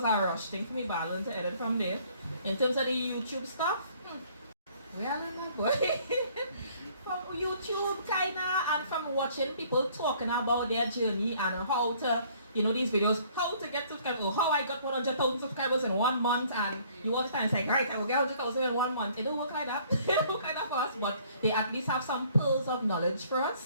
a rush thing for me, but I learned to edit from there. In terms of the YouTube stuff, we are learning, boy. From YouTube kinda, and from watching people talking about their journey and how to, you know, these videos, how to get subscribers, or how I got 100,000 subscribers in 1 month, and you watch that and say, right, I will get 100,000 in 1 month. It don't work like that. It don't work like that for us, but they at least have some pearls of knowledge for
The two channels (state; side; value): inverted; both; correlation -0.59